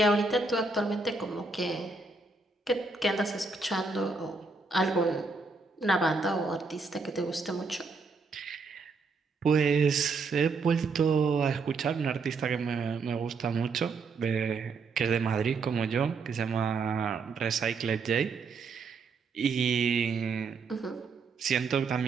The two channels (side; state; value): left; quieter; 4.3 dB